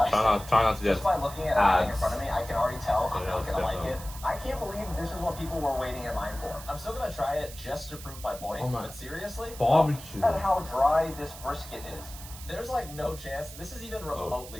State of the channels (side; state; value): right; noise; hiss, 14 dB below the sound